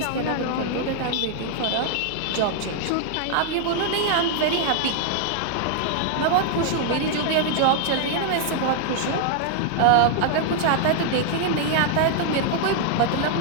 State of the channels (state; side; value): different; both; correlation 0.00